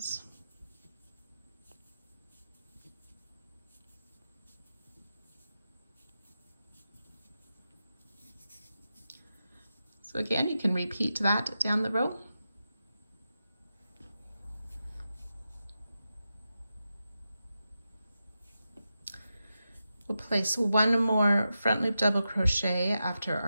So again, you can repeat that down the row. We'll place 1 more front loop double crochet after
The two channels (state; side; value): inverted; both; correlation -0.90